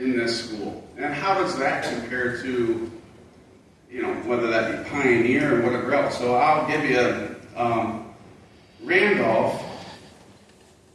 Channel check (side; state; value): both; identical; correlation 1.00